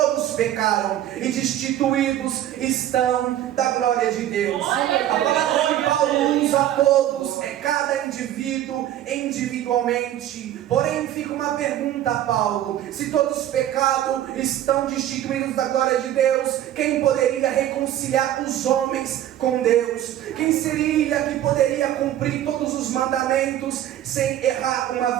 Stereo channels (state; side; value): quieter; left; 12.2 dB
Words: pecaram e destituídos estão da glória de Deus. A palavra que Paulo usa a todos é cada indivíduo individualmente. Porém fica uma pergunta a Paulo: se todos pecaram, estão destituídos da glória de Deus, quem poderia reconciliar os homens com Deus? Quem seria que poderia cumprir todos os mandamentos sem errar